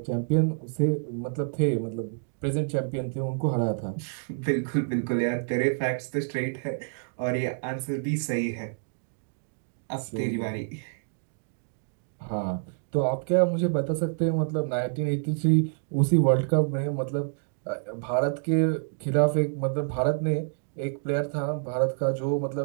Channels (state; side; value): silent; left; digital silence